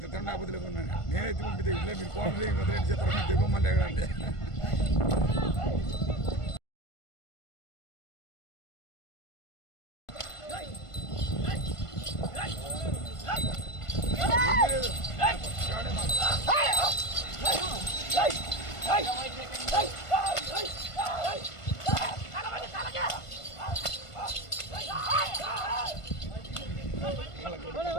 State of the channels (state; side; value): late; right; 1.5 ms